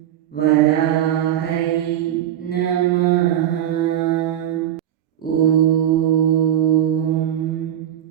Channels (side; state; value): left; quieter; 11.3 dB